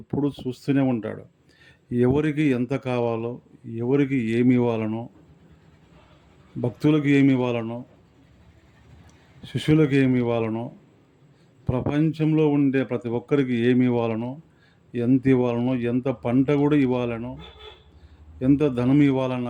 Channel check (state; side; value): identical; both; correlation 1.00